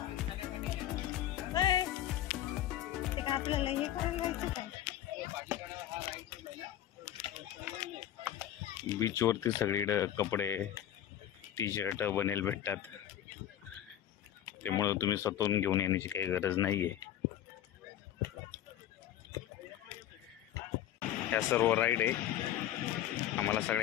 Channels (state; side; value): quieter; right; 11.7 dB